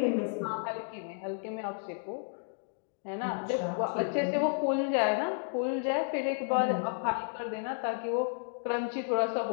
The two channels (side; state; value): right; silent; digital silence